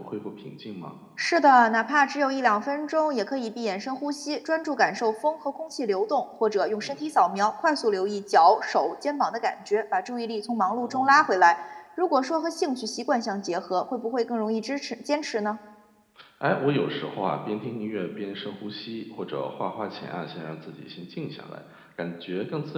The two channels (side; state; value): both; identical; correlation 1.00